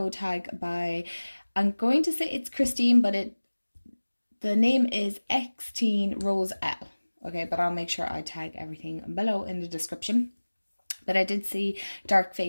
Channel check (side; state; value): both; inverted; correlation -1.00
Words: tag by, I'm going to say it's Christine, but the name is X-Teen Rose L. Okay, but I'll make sure I tag everything below in the description. But I did see Dark Fae